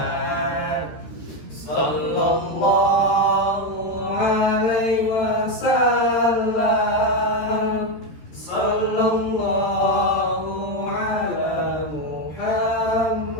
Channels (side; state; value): right; late; 13 ms